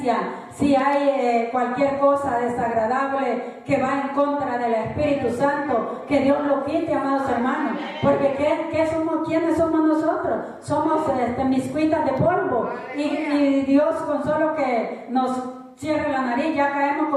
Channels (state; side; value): identical; both; correlation 1.00